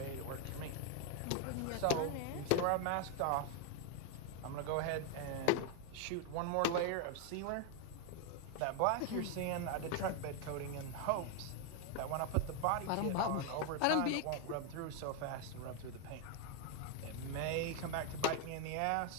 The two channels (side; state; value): both; different; correlation 0.01